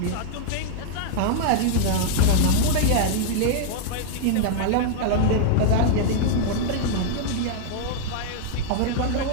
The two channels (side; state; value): both; different; correlation -0.01